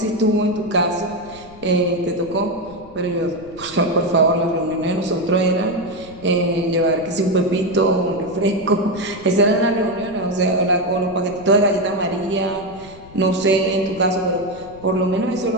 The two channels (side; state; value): left; noise; rumble, 21 dB below the sound